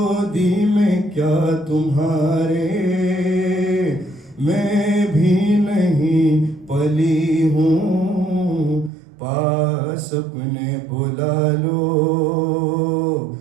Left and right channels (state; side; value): drops out; left; at 8.9 s